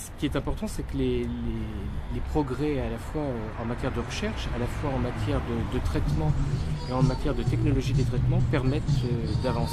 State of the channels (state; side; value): identical; both; correlation 1.00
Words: qui est important, c'est que les progrès à la fois en matière de recherche, à la fois en matière de traitement et en matière de technologie des traitements permettent